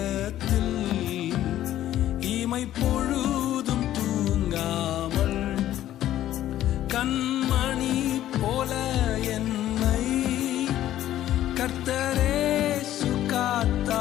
இமை பொழுதும் தூங்காமல் கண்மணி போல என்னை கர்த்தரே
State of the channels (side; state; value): right; quieter; 12.9 dB